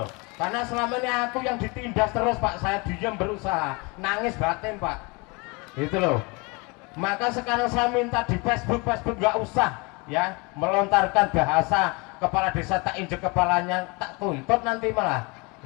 Karena selama ini aku yang ditindas terus Pak, saya diam berusaha, nangis batin Pak. Itu loh. Maka sekarang saya minta di Facebook nggak usah ya melontarkan bahasa kepala desa tak injek kepalanya, tak tuntut nanti malah.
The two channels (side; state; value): right; quieter; 28.2 dB